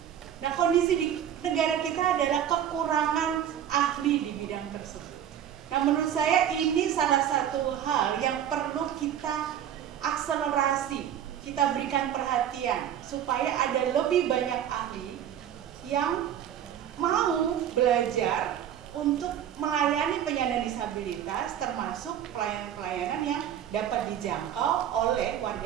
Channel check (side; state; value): left; quieter; 10.0 dB